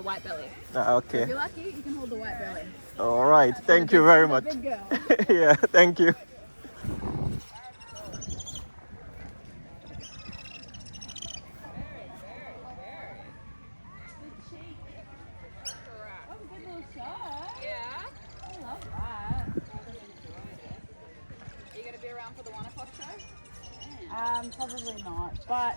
Okay. If you're lucky, you can hold the white-belly. All right. Thank you very much. Big girl. Yeah, thank you. Probably not,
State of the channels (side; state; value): both; inverted; correlation -1.00